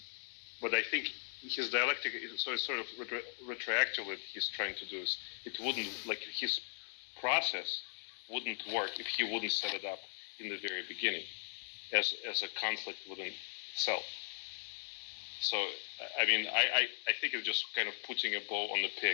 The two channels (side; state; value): right; silent; digital silence